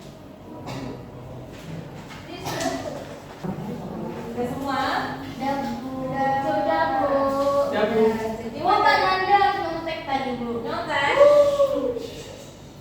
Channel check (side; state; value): both; identical; correlation 1.00